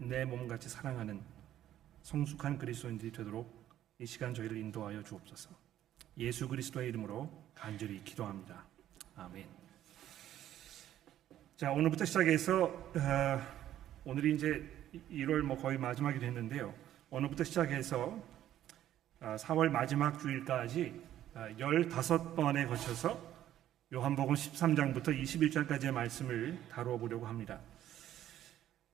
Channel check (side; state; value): left; quieter; 12.1 dB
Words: 내 몸같이 사랑하는 성숙한 그리스도인들이 되도록 이 시간 저희를 인도하여 주옵소서. 예수 그리스도의 이름으로 간절히 기도합니다. 아멘. 자, 오늘부터 시작해서 오늘이 이제 1월 거의 마지막이 됐는데요. 오늘부터 시작해서 4월 마지막 주일까지 15번에 거쳐서 요한복음 13장부터 21장까지의 말씀을 다루어 보려고 합니다.